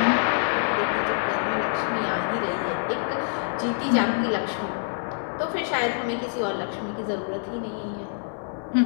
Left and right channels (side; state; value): right; silent; digital silence